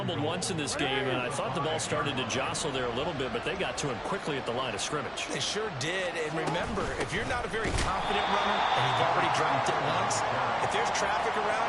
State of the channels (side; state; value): both; identical; correlation 1.00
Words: once in this game, and I thought the ball started to jostle there a little bit, but they got to him quickly at the line of scrimmage. They sure did, and remember, if you're not a very confident runner and you've already dropped it once, if there's traffic